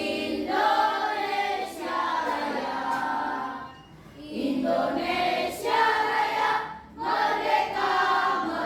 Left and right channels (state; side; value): identical; both; correlation 1.00